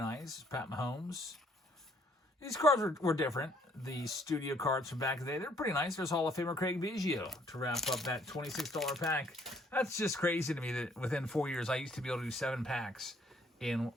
Pat Mahomes. These cards were different. The studio cards from back in the day, they're pretty nice. There's Hall of Famer Craig Biggio to wrap up that $26 pack. That's just crazy to me that within 4 years, I used to be able to do 7 packs in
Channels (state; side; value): normal; both; correlation 0.65